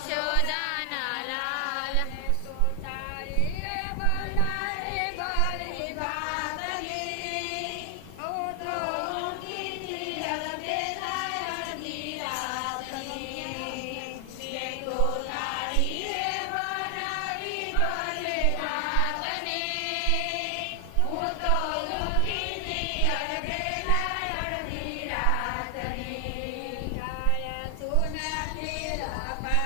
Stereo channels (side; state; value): both; different; correlation 0.00